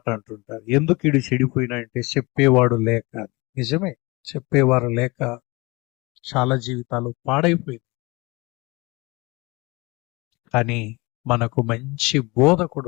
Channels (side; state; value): right; quieter; 24.7 dB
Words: అంటుంటారు, ఎందుకు ఇడు చెడిపోయినా అంటే చెప్పేవాడు లేక. నిజమే, చెప్పేవారు లేక చాలా జీవితాలు పాడైపోయింది. కానీ మనకు మంచి బోధకుడు